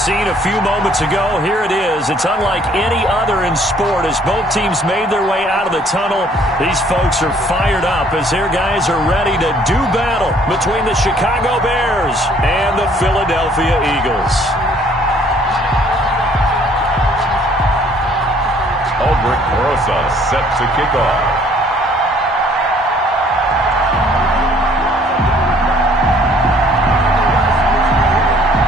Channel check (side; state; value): both; normal; correlation 0.60